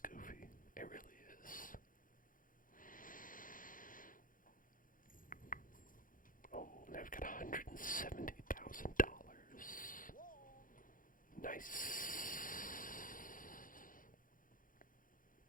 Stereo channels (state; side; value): late; right; 0.40 ms